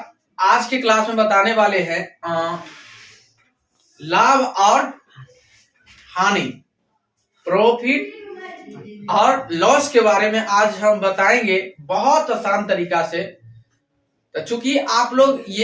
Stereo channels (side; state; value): both; identical; correlation 1.00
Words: आज की क्लास में बताने वाले हैं लाभ और हानि, प्रॉफिट और लॉस के बारे में आज हम बताएंगे बहुत आसान तरीका से। तो चूंकि आप लोग